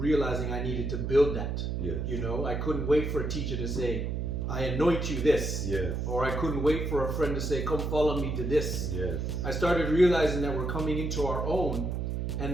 I needed to build that. Yes. You know, I couldn't wait for a teacher to say, I anoint you this. Yes. Or I couldn't wait for a friend to say, come follow me to this. Yes. I started realizing that we're coming into our own,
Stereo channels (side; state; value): right; noise; hum, 2 dB below the sound